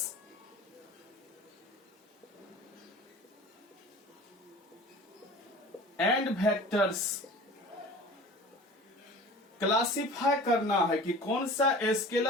and vectors. Classify करना है कि कौन सा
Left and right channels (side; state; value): both; normal; correlation 0.41